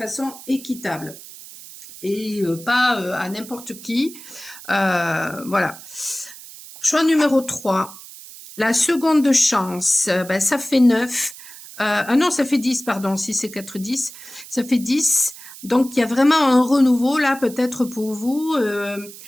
équitable et pas à n'importe qui. Voilà. Choix numéro 3. La seconde chance, ça fait 9. Ah non, ça fait 10, pardon, si c'est 4, 10. Ça fait 10. Donc, il y a vraiment un renouveau là, peut-être pour vous.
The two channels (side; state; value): right; noise; hiss, 16 dB below the sound